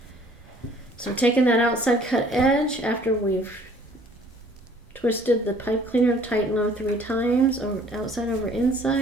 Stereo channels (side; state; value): both; normal; correlation 0.56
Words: So taking that outside cut edge after we've twisted the pipe cleaner tight and low 3 times, over outside over